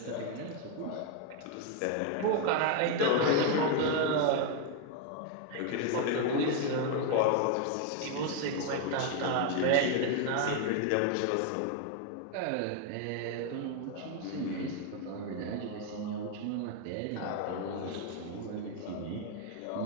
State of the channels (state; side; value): different; both; correlation 0.01